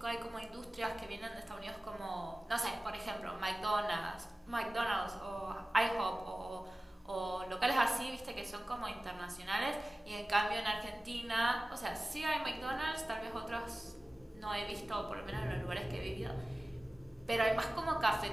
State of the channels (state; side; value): normal; both; correlation 0.97